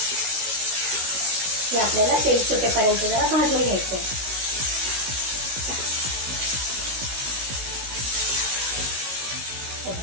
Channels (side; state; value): left; late; 16 ms